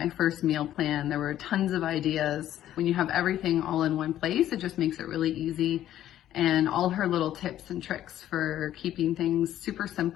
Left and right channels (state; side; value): quieter; right; 12.2 dB